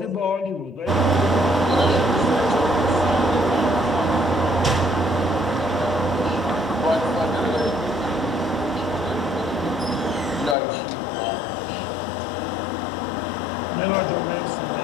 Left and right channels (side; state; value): right; drops out; at 10.6 s